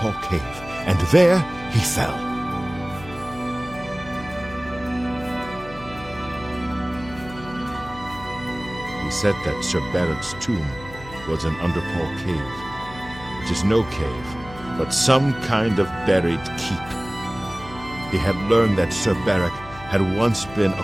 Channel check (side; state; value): left; noise; hum, 16 dB below the sound